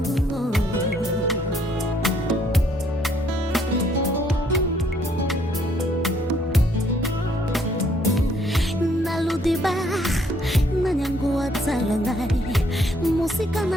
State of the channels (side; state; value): both; normal; correlation 0.67